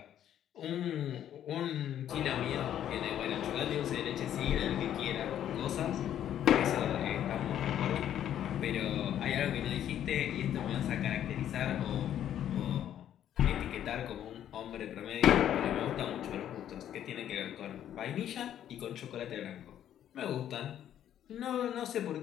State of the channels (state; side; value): quieter; right; 10.7 dB